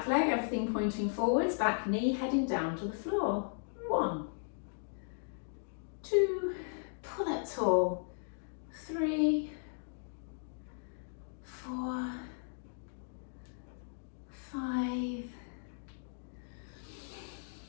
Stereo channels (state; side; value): silent; right; digital silence